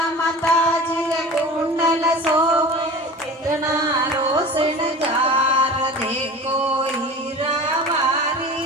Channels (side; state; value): both; normal; correlation 0.37